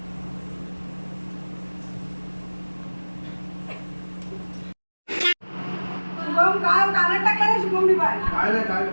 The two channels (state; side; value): inverted; both; correlation -1.00